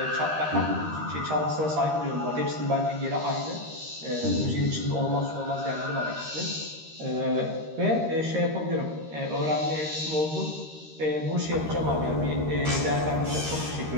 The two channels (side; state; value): left; late; 13 ms